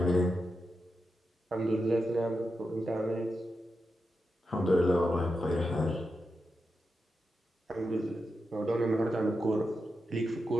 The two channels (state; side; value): normal; both; correlation 0.88